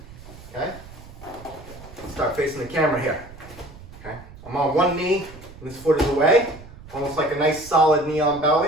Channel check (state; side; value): noise; right; rumble, 18 dB below the sound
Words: okay? Start facing the camera here, okay? I'm on one knee and this foot is away, almost like a nice solid knee on